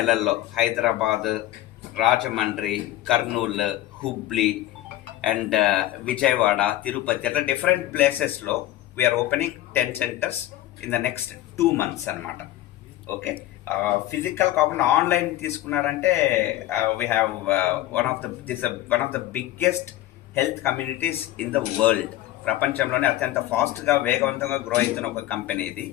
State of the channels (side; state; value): right; quieter; 14.7 dB